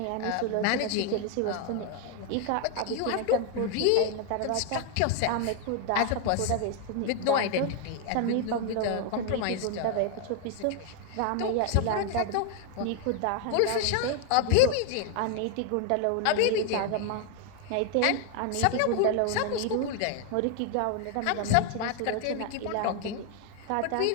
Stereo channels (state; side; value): different; both; correlation 0.00